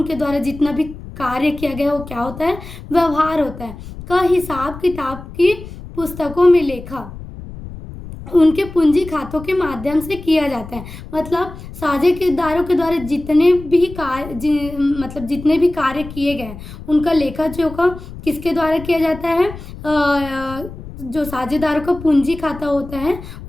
द्वारा जितना भी कार्य किया गया है वो क्या होता है, व्यवहार होता है, का हिसाब किताब की पुस्तकों में लेखा उनके पूंजी खातों के माध्यम से किया जाता है। मतलब साझेदारों के द्वारा जितने भी कार्य किए गए उनका लेखा जोखा किसके द्वारा किया जाता है, जो साझेदारों का पूंजी खाता होता है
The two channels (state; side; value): noise; left; rumble, 13 dB below the sound